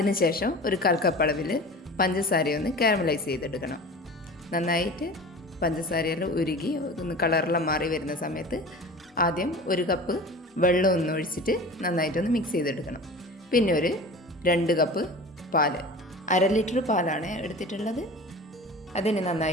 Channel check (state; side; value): normal; both; correlation 0.37